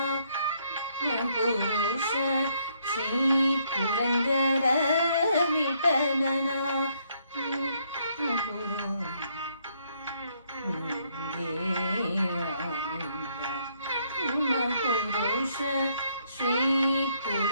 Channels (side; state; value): both; inverted; correlation -0.71